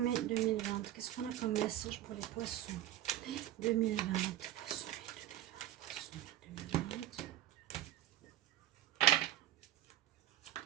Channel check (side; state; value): left; quieter; 13.1 dB